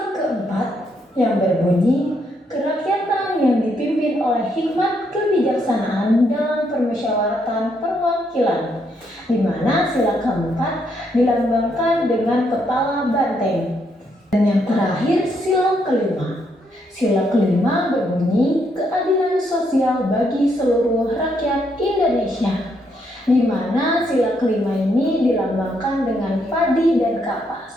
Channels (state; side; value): normal; both; correlation 0.75